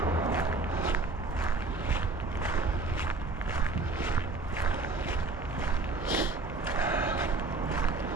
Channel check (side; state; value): left; quieter; 3.3 dB